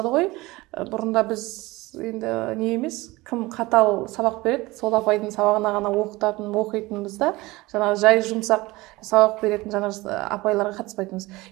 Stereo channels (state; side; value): quieter; left; 20.9 dB